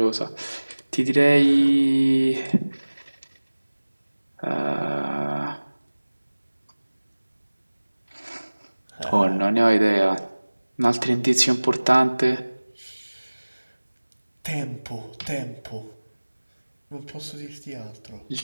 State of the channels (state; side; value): inverted; both; correlation -1.00